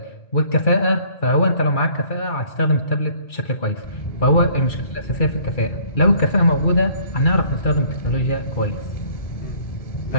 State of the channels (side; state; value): right; late; 2.4 ms